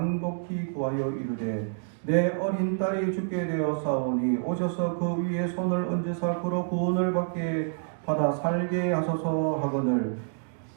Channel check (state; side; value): silent; left; digital silence